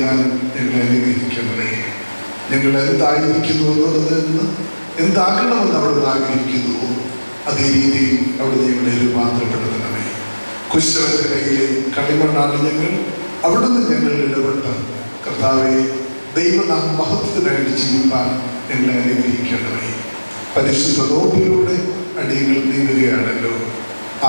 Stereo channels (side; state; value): both; inverted; correlation -1.00